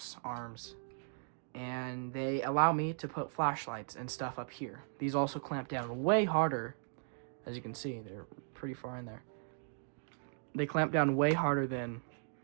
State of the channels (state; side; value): silent; left; digital silence